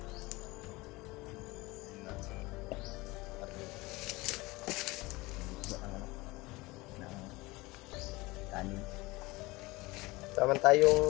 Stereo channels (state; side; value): quieter; right; 21.9 dB